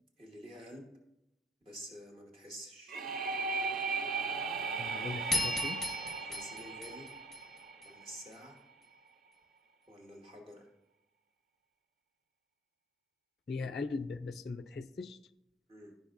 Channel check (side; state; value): both; normal; correlation 0.51